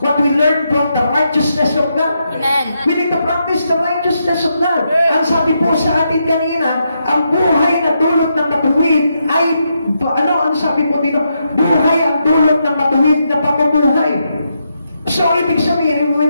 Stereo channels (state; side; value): inverted; both; correlation -0.82